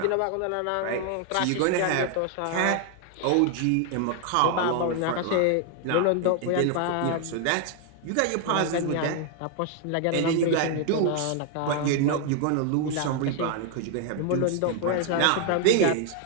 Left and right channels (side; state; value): both; different; correlation 0.00